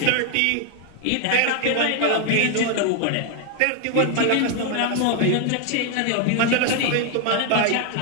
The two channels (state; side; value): different; both; correlation 0.01